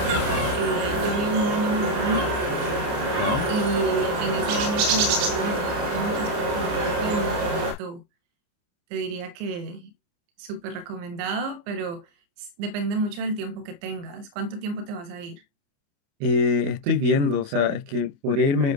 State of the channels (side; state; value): left; late; 29 ms